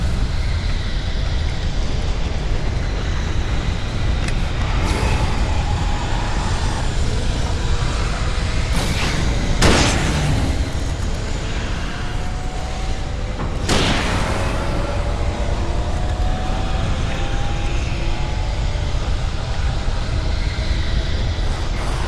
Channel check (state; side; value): identical; both; correlation 1.00